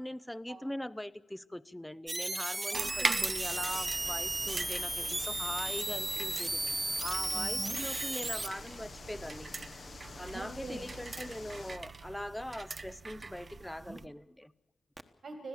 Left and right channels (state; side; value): normal; both; correlation 0.97